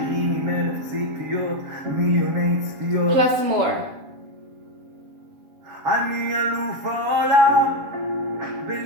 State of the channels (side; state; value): left; late; 7.2 ms